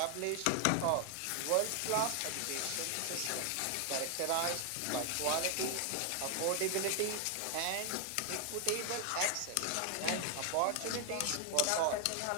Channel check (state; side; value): different; both; correlation 0.00